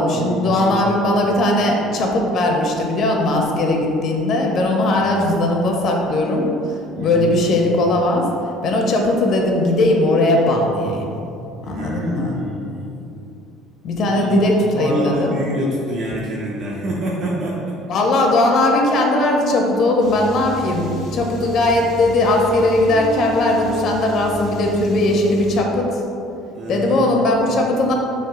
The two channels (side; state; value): both; normal; correlation 0.53